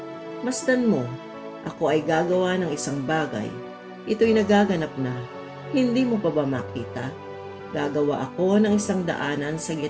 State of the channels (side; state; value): both; identical; correlation 1.00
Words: Masdan mo, ako ay gagawa ng isang bagay. Ito'y nagaganap na. Hindi mo pa ba makita? Gagawa ako ng isang daanan sa